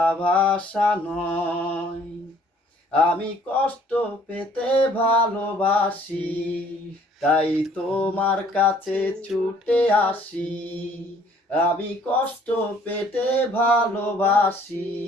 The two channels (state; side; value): normal; both; correlation 0.59